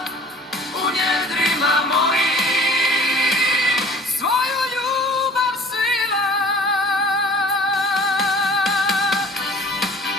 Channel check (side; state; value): both; normal; correlation 0.48